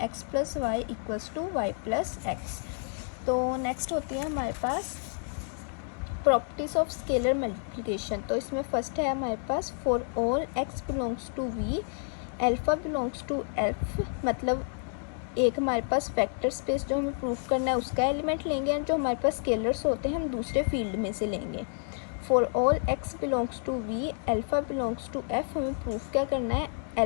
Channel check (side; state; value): right; silent; 58 dB below the other